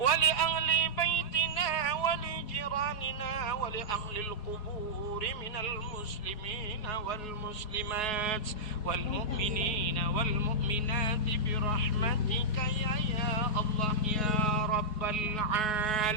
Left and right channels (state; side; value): late; right; 4.7 ms